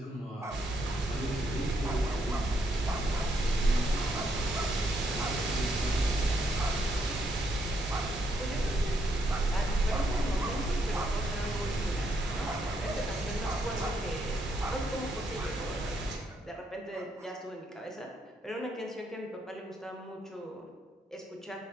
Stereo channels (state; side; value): normal; both; correlation 0.76